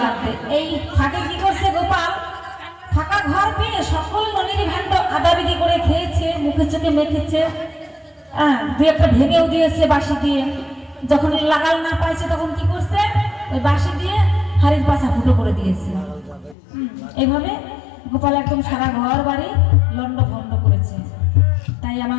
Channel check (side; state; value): right; drops out; at 16.6 s